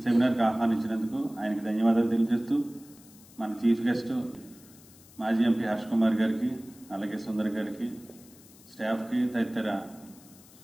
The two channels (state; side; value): noise; left; hiss, 23 dB below the sound